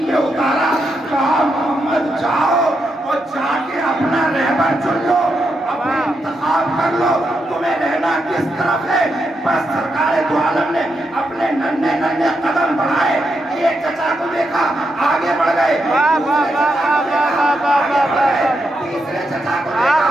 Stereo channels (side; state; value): both; normal; correlation 0.83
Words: पे उतारा, कहा मोहम्मद जाओ और जाके अपना रहबर चुन लो, अपना इंतखाब कर लो, तुम्हें रहना किस तरफ है। बस सरकार दो आलम ने अपने नन्हे नन्हे कदम बढ़ाए, एक चचा को देखा आगे बढ़ गए, तीसरे चचा को देखा